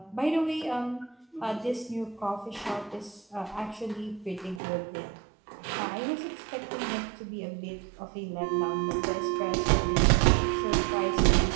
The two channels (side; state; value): left; drops out; at 4.6 s